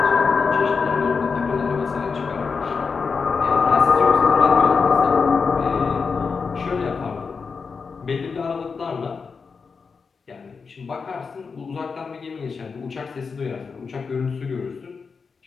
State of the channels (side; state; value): right; quieter; 5.2 dB